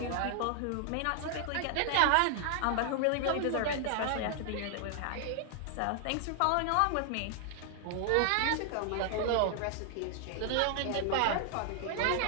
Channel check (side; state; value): both; different; correlation 0.00